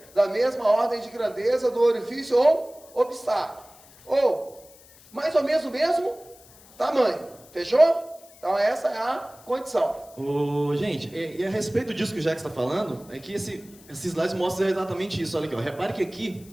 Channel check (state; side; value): noise; left; hiss, 24 dB below the sound